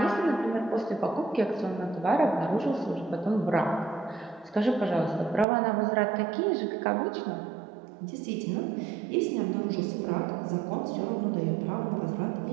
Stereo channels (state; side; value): drops out; left; at 5.5 s